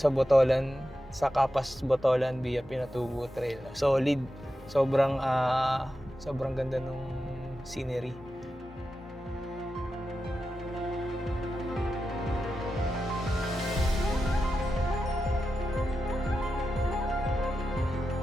Botolan, sa Capas Botolan via Pinatubo Trail. Solid. Sobrang ganda nung scenery.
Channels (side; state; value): both; normal; correlation 0.90